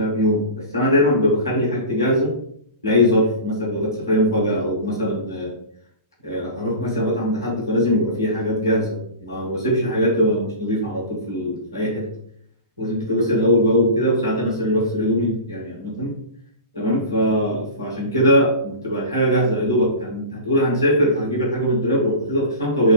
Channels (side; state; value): both; inverted; correlation -0.32